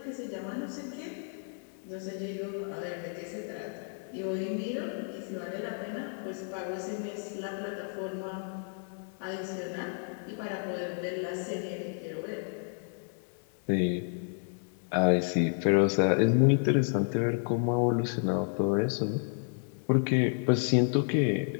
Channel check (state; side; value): silent; right; 57 dB below the other